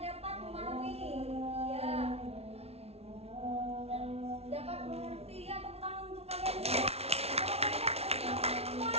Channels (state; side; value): late; left; 0.30 ms